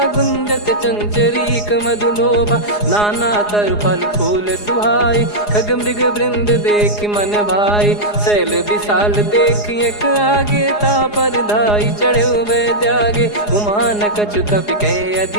गुंजत चंचरीक मधुलोभा। नाना तर फल फूल सुहाई खग मृग वृंद देख मन भाई। शैल विशाल देख एक आगे ता पर धाई चढ़े वै त्यागे। उमा न कछु कपि कह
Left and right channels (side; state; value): right; late; 4.8 ms